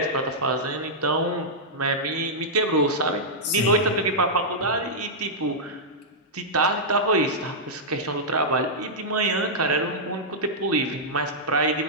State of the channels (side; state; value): both; normal; correlation -0.10